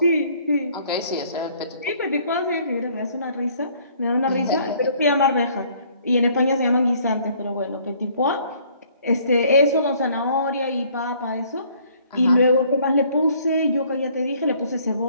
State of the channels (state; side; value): inverted; both; correlation -0.60